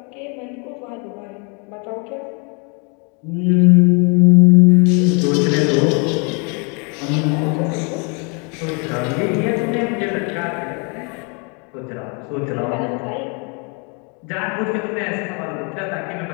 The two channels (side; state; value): right; quieter; 34.4 dB